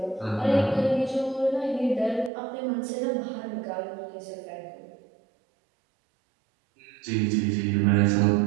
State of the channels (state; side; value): drops out; left; at 2.3 s